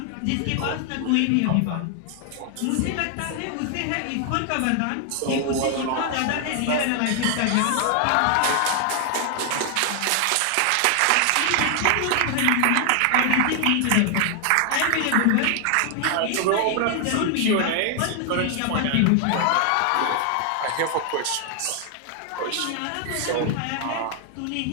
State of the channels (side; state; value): both; different; correlation 0.00